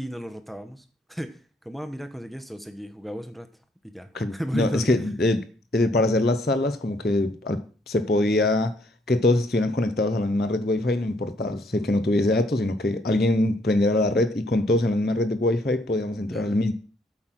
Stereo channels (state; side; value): normal; both; correlation 0.68